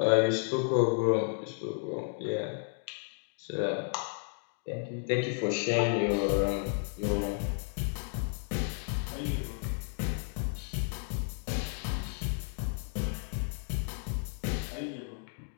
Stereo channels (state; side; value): silent; right; 56 dB below the other